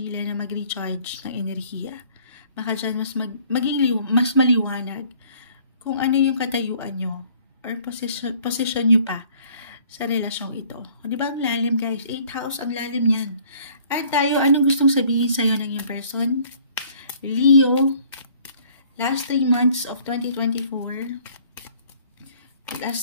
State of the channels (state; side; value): inverted; both; correlation -0.57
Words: na mag-recharge ng enerhiya. Baka dyan mas maliwanag kung ano yung katayuan nyo or position nyo pa sa relasyong ito. O, di ba ang lalim, guys? 8th house, ang lalim yan. At tayo, anong gustong sabihin sa'yo ng iyong person? Leo, last 3 months of 2024.